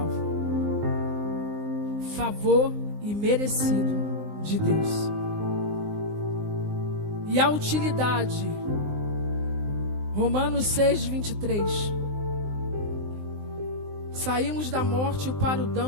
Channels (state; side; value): late; left; 19 ms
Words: Favor imerecido de Deus. E a utilidade, Romanos 6, 23. Saímos da morte para o